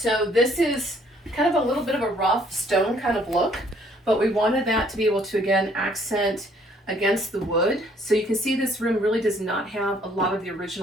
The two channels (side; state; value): both; normal; correlation 0.63